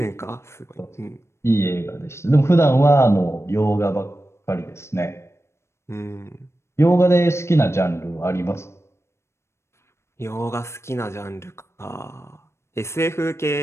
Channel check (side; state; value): right; late; 0.13 ms